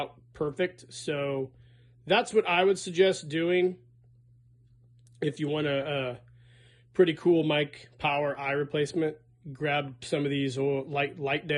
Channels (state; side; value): identical; both; correlation 1.00